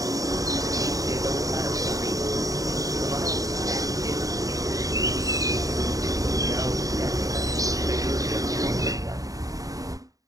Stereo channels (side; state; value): left; late; 0.17 ms